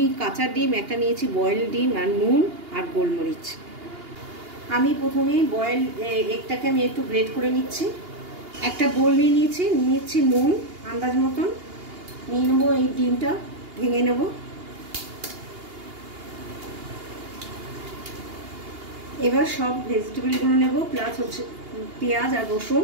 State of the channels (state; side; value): late; left; 2.8 ms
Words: কাঁচা ডিম, একটা নিয়েছি বয়েল ডিম, আর নুন আর গোলমরিচ। আমি প্রথমে বয়েল এগটাকে আমি একটু গ্রেট করে নিচ্ছি। একটা বোল নিয়ে নিচ্ছি নুন আন্দাজ মতন, নিয়ে নেবো এই ডিমটা ভেঙে নেবো। এবার সব ভেজিটেবলগুলো নেব, প্লাস হচ্ছে পেঁয়াজ আর